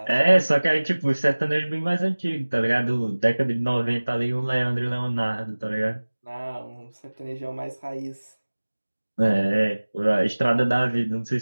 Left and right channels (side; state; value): both; inverted; correlation -1.00